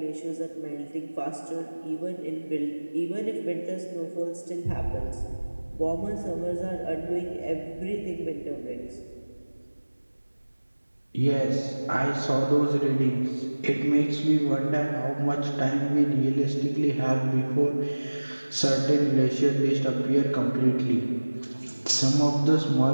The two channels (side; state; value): both; inverted; correlation -1.00